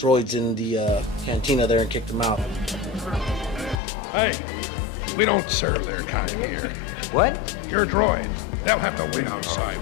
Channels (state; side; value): drops out; right; at 3.8 s